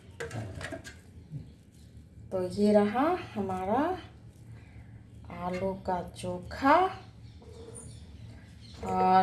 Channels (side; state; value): both; identical; correlation 1.00